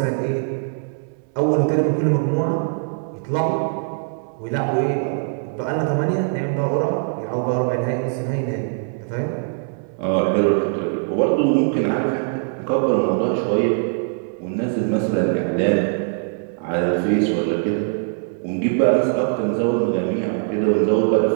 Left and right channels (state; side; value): silent; left; digital silence